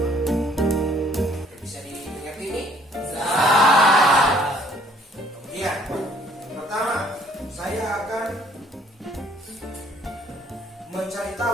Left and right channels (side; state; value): both; normal; correlation 0.60